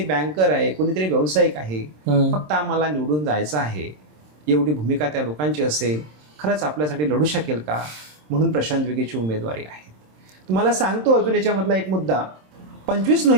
बँकर आहे, कोणीतरी व्यावसायिक आहे. फक्त आम्हाला निवडून जायचं आहे, एवढी भूमिका त्या लोकांची असेल, खरंच आपल्यासाठी लढू शकेल का, म्हणून प्रशांत विखेची उमेदवारी आहे. तुम्हाला सांगतो अजून याच्यामधला एक मुद्दा. 25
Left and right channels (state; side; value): late; left; 27 ms